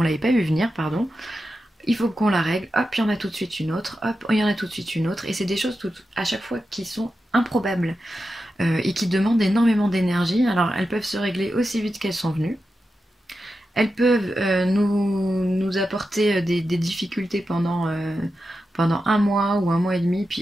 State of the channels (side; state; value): both; normal; correlation 0.90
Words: vu venir, pardon. Il faut qu'on la règle, hop, il y en a tout de suite une autre, hop, il y en a tout de suite une autre, et c'est des choses à chaque fois qui sont improbables. Et qui demandent énormément d'énergie. Alors elles peuvent se régler aussi vite qu'elles sont venues. Elles peuvent nous apporter des difficultés pendant un mois ou un mois et demi,